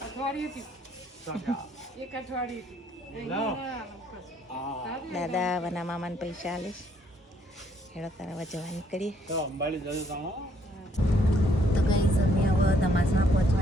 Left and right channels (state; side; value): normal; both; correlation 0.67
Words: દાદા વના મામાને પૈસા આલીશ હેડો તારા જવા નીકળીએ તો કઈ સમય હવે ધમાસણા